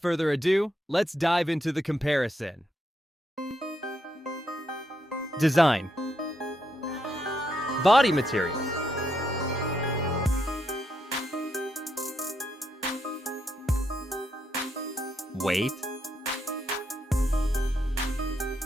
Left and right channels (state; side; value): normal; both; correlation 0.79